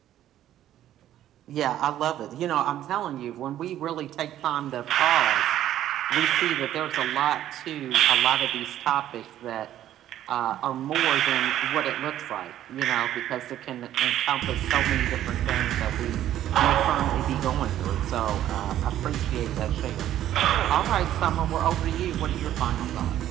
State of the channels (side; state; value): left; quieter; 12.2 dB